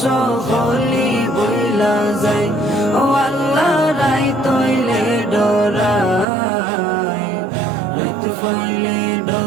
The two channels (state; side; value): drops out; left; at 6.2 s